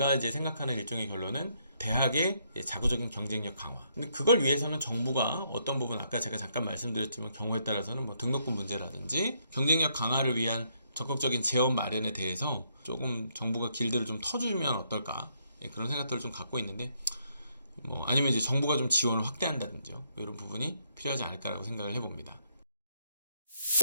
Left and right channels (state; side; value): inverted; both; correlation -0.73